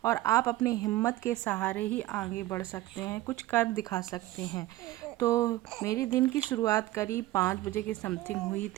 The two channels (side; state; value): left; quieter; 16.5 dB